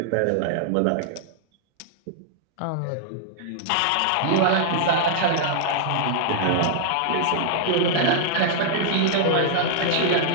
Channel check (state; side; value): different; both; correlation -0.01